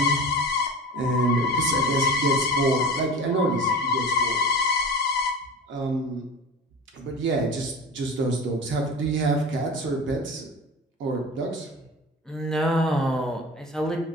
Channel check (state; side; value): normal; both; correlation 0.34